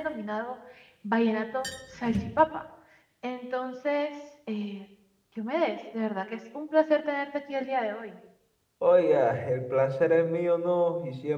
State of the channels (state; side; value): identical; both; correlation 1.00